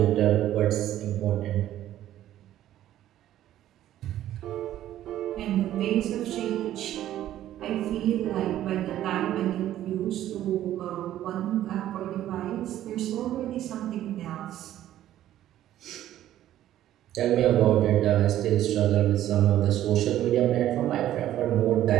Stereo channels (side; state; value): left; quieter; 12.7 dB